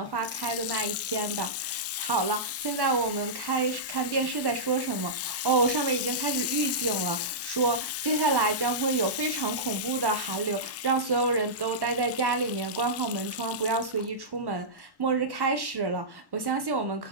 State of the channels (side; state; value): both; normal; correlation -0.14